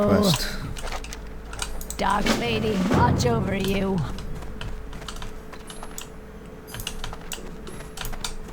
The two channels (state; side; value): identical; both; correlation 1.00